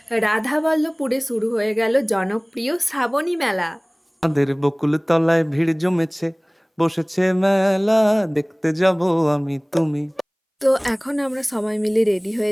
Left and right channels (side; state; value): both; identical; correlation 1.00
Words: রাধাবল্লভপুরে শুরু হয়ে গেল জনপ্রিয় শ্রাবণী মেলা। আমাদের বকুল তলায় ভিড় জমেছে, বসেছে মেলা, দেখতে যাব আমি তুমি। তো এখন আমরা সবাই মিলে রেডি